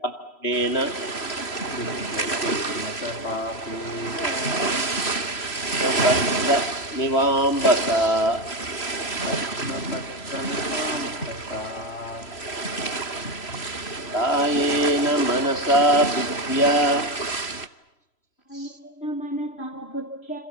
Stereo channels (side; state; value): right; late; 3.0 ms